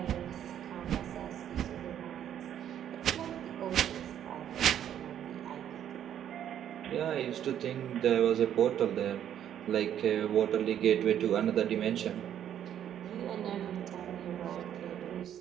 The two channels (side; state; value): left; quieter; 10.2 dB